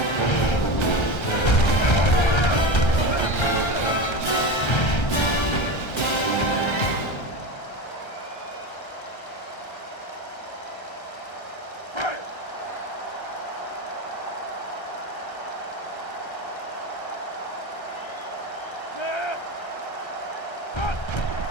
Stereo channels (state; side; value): late; right; 1.3 ms